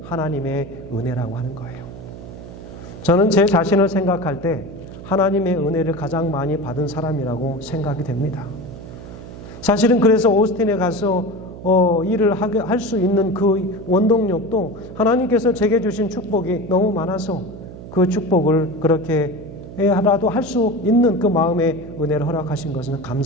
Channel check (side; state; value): right; noise; hum, 14 dB below the sound